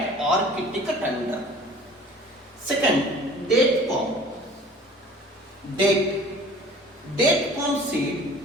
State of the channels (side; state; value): both; normal; correlation 0.46